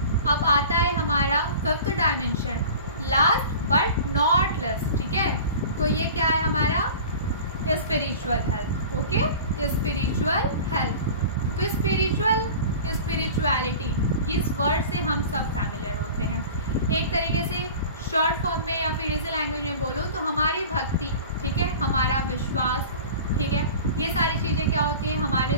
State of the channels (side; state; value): both; inverted; correlation -0.39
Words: अब आता है हमारा fifth dimension, last but not less, ठीक है। तो ये क्या है हमारा? Spiritual health. Okay, spiritual health. तो स्पिरिचुअलिटी, इस वर्ड से हम सब फैमिलियर होते हैं। एक तरीके से शॉर्ट फॉर्म में या फिर इसी लैंग्वेज में बोलो तो हमारी भक्ति, ठीक है, हमारा विश्वास, ठीक है, ये सारी चीज़ें क्या होती हैं? हमारे